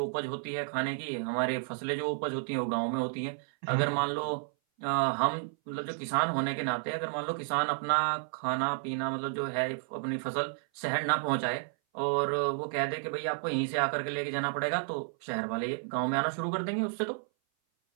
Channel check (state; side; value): silent; left; 57 dB below the other